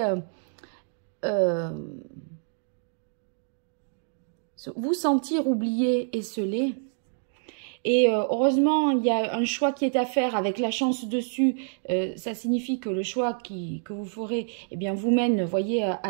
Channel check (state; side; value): silent; left; digital silence